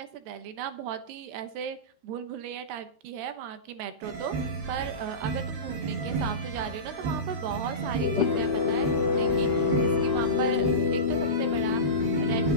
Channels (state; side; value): late; left; 13 ms